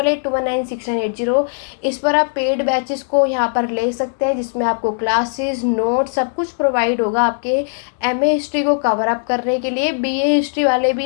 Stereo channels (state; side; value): silent; right; digital silence